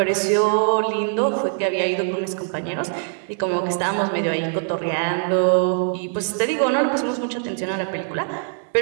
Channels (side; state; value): left; silent; 64 dB below the other